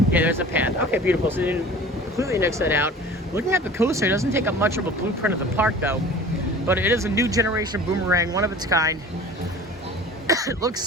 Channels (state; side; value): normal; both; correlation 0.43